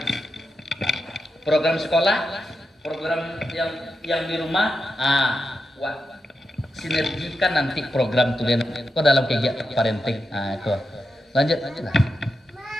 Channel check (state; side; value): normal; both; correlation 0.87